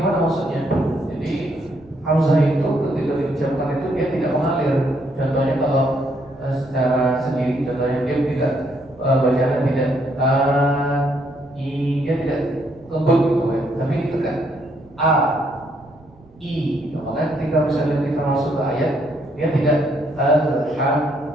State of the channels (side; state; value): right; noise; rumble, 26 dB below the sound